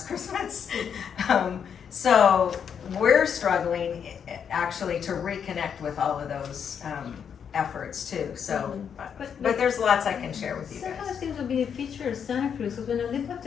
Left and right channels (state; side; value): quieter; right; 7.6 dB